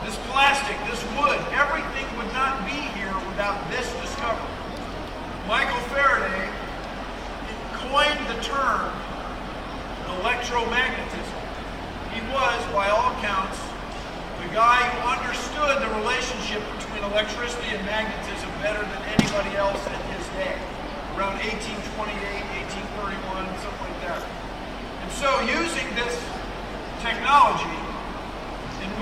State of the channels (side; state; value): both; identical; correlation 1.00